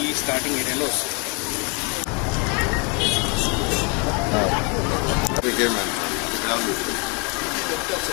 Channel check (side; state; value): right; quieter; 33.3 dB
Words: స్టార్టింగ్ ఏరియాలో వస్తుంది.